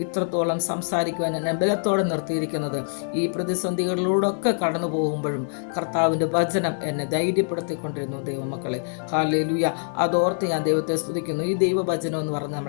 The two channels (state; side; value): silent; right; 60 dB below the other